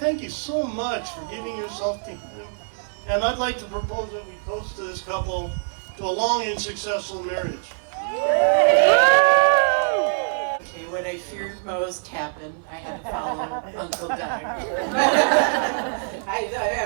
you so much for giving yourself to him. And I'd like to propose that we toast to this couple to a long and successful marriage. Okay, what I feared most happened. I had to follow Uncle Doug.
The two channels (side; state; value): left; silent; digital silence